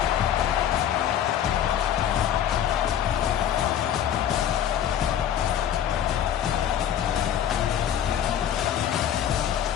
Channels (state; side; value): quieter; right; 9.7 dB